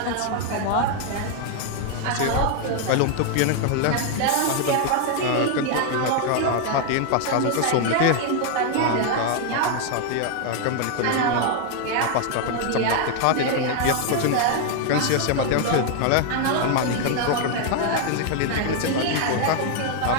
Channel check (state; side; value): different; both; correlation 0.00